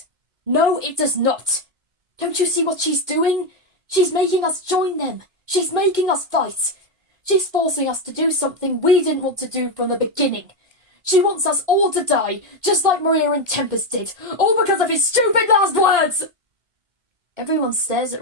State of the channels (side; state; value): left; late; 2.1 ms